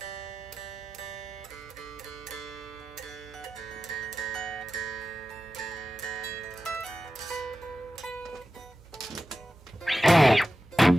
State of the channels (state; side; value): normal; both; correlation 0.93